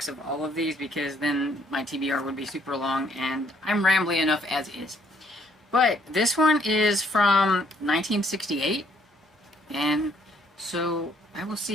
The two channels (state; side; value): normal; both; correlation 0.66